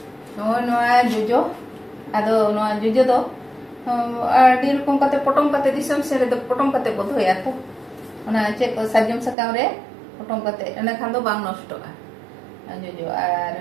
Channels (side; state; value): left; drops out; at 9.3 s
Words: नोआ जोजो आदो नोआ जोजो दो आडी रकम कते पटम कते दिसम से रे पटम कते बधोया तो ओना चेक को साजम सकाम रे पटम कते एना खान दो बांग नष्टोगा जोजो आर